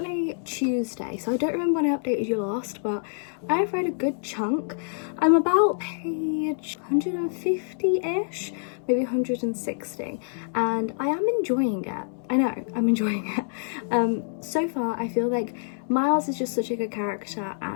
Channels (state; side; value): silent; right; 61 dB below the other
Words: Tuesday, so I don't remember when I updated you last, but I've read a good chunk. I'm about page 150-ish, maybe 160, and I am enjoying it. I know, I'm enjoying it. So far, I feel like Miles is just such a good character,